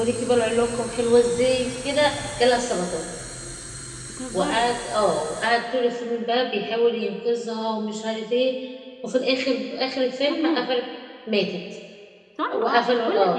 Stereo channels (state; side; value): identical; both; correlation 1.00